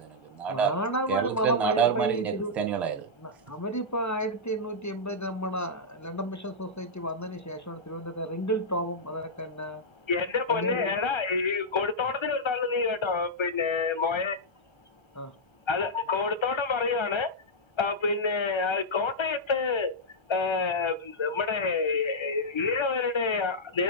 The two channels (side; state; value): both; normal; correlation -0.08